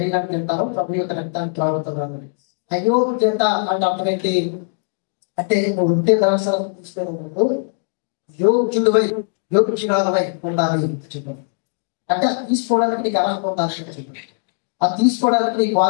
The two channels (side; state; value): right; silent; digital silence